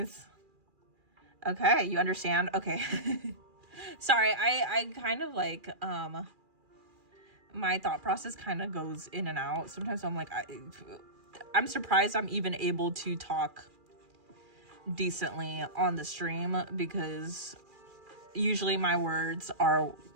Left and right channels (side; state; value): left; late; 2.4 ms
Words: Okay, you understand? Okay. Sorry, I kind of like, my thought process kind of goes in and out. Sometimes I'm like, I'm surprised I'm even able to talk decently on the stream, because usually my words are